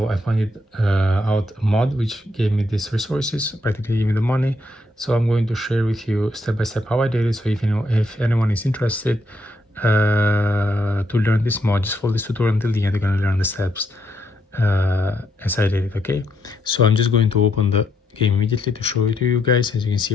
I found out a mod which gave me these resources, practically gave me the money. So I'm going to share with you step by step how I did it. So if anyone is interested to learn this mod, just follow this tutorial until the end. You're going to learn the steps as I did it. Okay, so I'm just going to open the game immediately to show it to you guys. As you can see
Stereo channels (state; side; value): normal; both; correlation 0.76